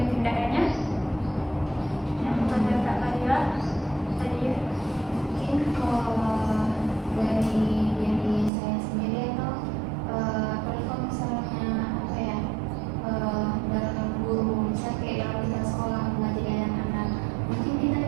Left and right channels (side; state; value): left; drops out; at 8.5 s